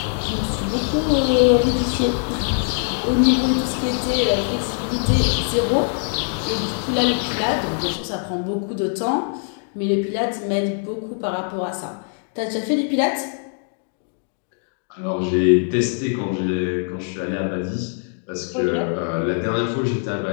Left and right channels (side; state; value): right; silent; 59 dB below the other